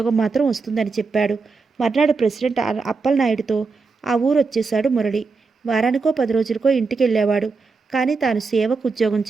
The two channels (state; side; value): quieter; left; 4.4 dB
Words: మాత్రం వస్తుందని చెప్పాడు. మర్నాడు ప్రెసిడెంట్ అప్పలనాయుడుతో ఆ ఊరు వచ్చేశాడు మురళి. వారానికో 10 రోజులకో ఇంటికి వెళ్ళేవాడు. కానీ తాను సేవకు ఉద్యోగం